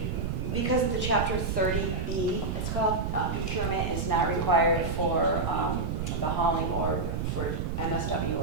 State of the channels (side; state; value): right; noise; rumble, 2 dB below the sound